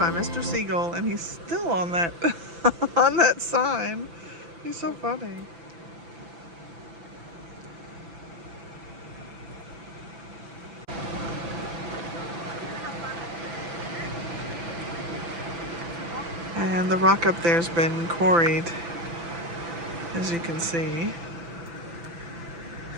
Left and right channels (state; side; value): late; left; 5.9 ms